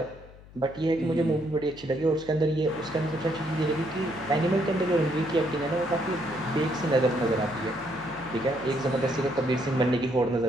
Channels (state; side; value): noise; left; hum, 21 dB below the sound